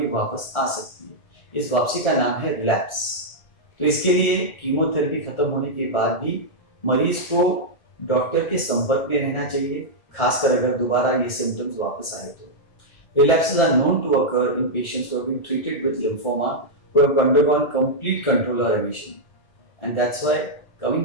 वापस आ सकती है। इस वापसी का नाम है रिलैप्स। तो इसके लिए कीमोथेरेपी खत्म होने के बाद भी मरीज को डॉक्टर के संपर्क में रहना चाहिए, खासकर अगर दोबारा ये सिम्टम्स वापस आए तो। Relapses are known to occur in patients who have been treated with lymphoma, who have undergone complete control or remission. And that's why coming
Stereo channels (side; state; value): right; late; 1.4 ms